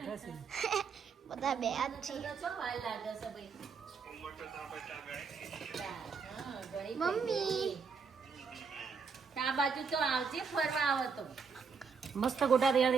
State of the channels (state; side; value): quieter; left; 5.5 dB